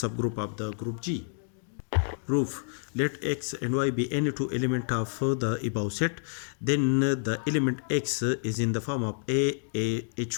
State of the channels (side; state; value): right; silent; digital silence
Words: subgroup of the group G. Proof: let X and Y be any two elements of the above set, then the element X is in the form of